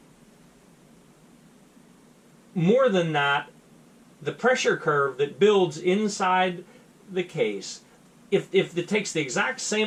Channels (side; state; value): both; identical; correlation 1.00